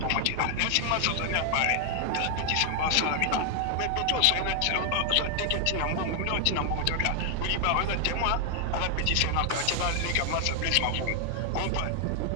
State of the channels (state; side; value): different; both; correlation 0.00